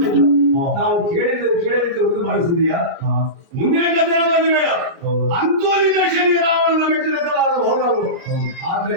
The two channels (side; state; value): left; late; 29 ms